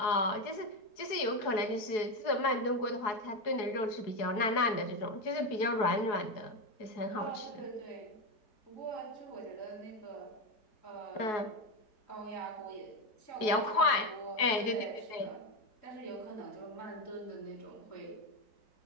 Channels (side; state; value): right; late; 4.7 ms